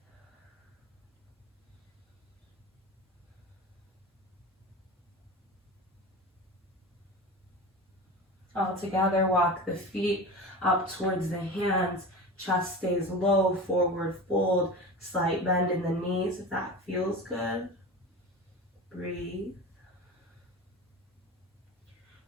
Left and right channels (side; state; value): both; normal; correlation 0.31